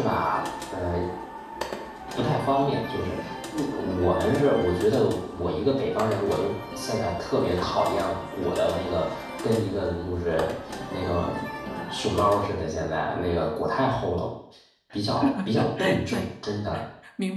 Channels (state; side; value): identical; both; correlation 1.00